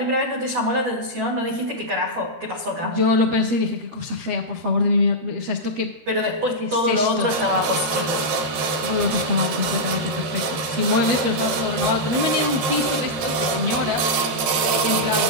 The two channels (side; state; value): left; late; 13 ms